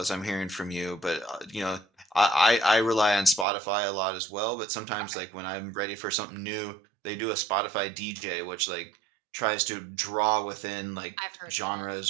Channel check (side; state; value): left; drops out; at 3.5 s